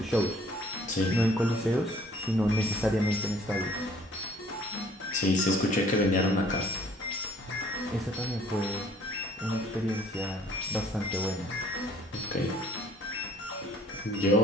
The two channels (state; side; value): normal; both; correlation 0.57